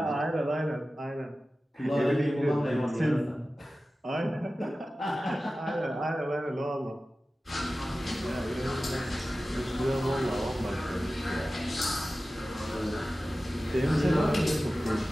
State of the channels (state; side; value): normal; both; correlation 0.95